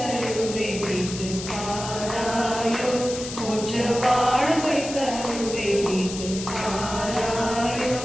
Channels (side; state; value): left; noise; hiss, 9 dB below the sound